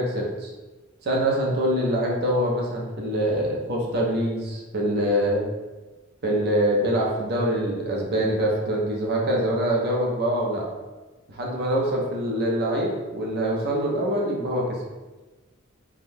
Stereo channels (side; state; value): both; normal; correlation 0.20